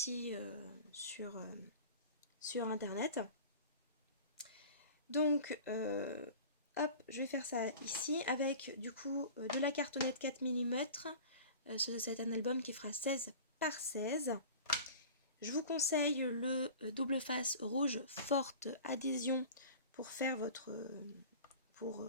sur internet. Donc hop, je vais faire ça ici avec du coup de la cartonnette 4 mm. C'est un album qui fera 16 par 16. Je vous conseille le double face rouge forte adhésion pour faire pour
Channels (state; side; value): inverted; both; correlation -0.39